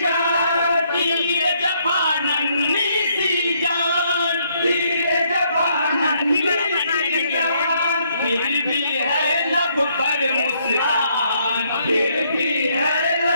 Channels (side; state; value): both; inverted; correlation -0.70